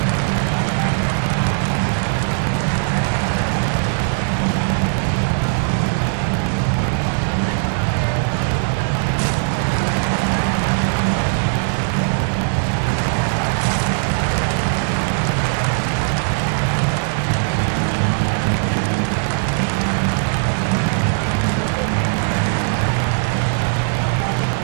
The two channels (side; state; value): left; silent; digital silence